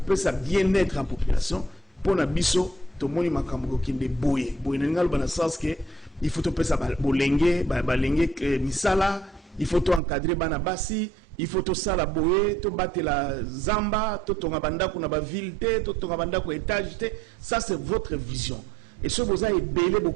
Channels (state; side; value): drops out; left; at 10.0 s